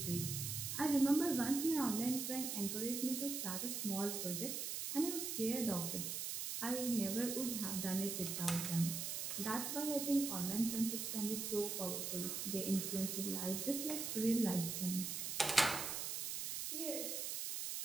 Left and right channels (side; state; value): right; noise; hiss, 3 dB below the sound